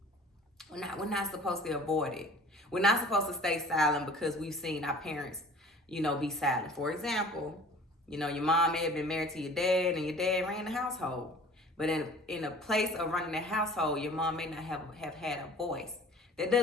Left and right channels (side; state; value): both; normal; correlation 0.46